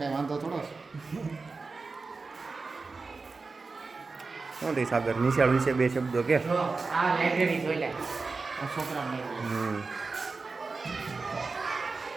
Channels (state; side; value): quieter; left; 4.1 dB